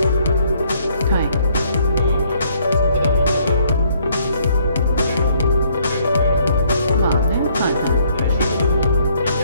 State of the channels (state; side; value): inverted; both; correlation -0.66